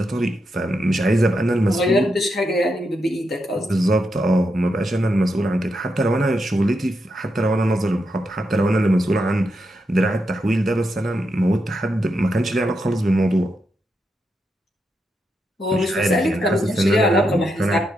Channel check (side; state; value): both; normal; correlation 0.84